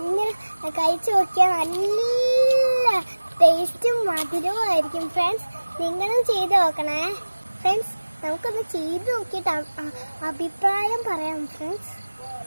കഴിച്ചു നോക്കിയാൽ നല്ല ടേസ്റ്റും മധുരവും ആയിരിക്കും ഫ്രണ്ട്സ്. നിങ്ങളും ചെയ്ത് നോക്കണേ ഫ്രണ്ട്സ്. നമുക്കൊന്ന് ചെയ്ത് നോക്കിയിട്ട് അഭിപ്രായം പറയാം ഫ്രണ്ട്സ്.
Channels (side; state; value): both; inverted; correlation -1.00